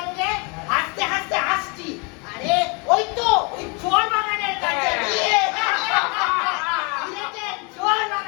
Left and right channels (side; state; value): right; quieter; 31.9 dB